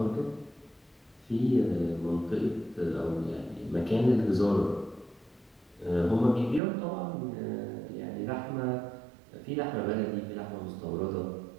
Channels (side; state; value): left; drops out; at 6.6 s